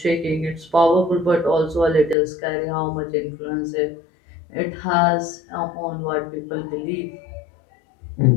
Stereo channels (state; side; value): drops out; right; at 2.1 s